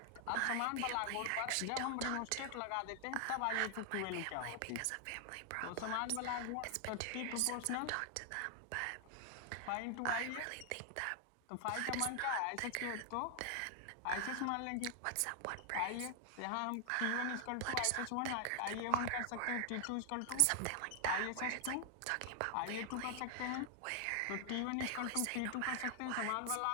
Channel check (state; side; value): different; both; correlation 0.00